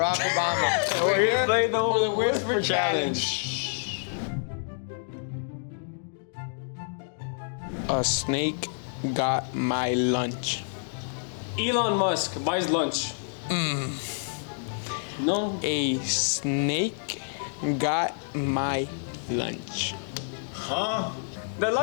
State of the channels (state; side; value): silent; right; digital silence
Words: Obama. We're here to play the Whisper Challenge. A snake got my lunch. Elon Musk buys lunch. No. A snake got my lunch. Huh? The